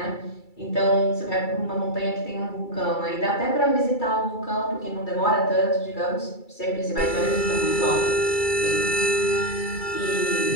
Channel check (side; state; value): right; late; 2.3 ms